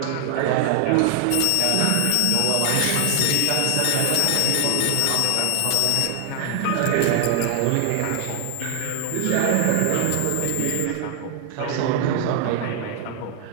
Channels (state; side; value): different; both; correlation 0.00